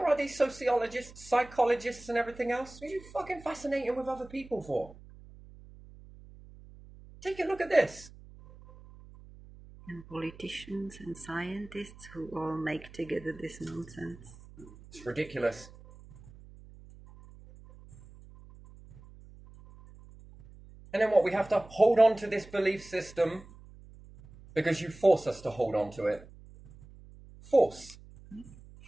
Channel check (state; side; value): noise; right; hum, 20 dB below the sound